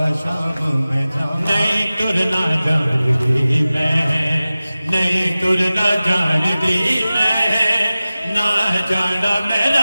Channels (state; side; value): inverted; both; correlation -0.96